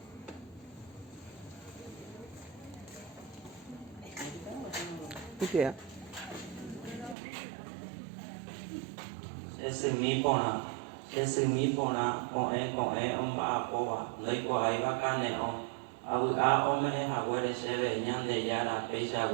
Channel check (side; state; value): left; drops out; at 7.2 s